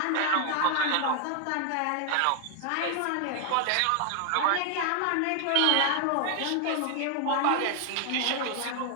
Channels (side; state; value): both; different; correlation 0.00